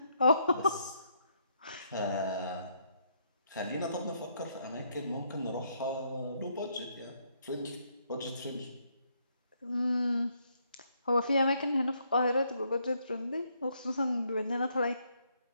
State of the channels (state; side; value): inverted; both; correlation -0.73